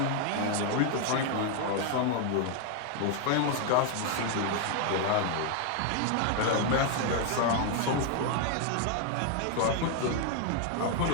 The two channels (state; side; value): different; both; correlation 0.00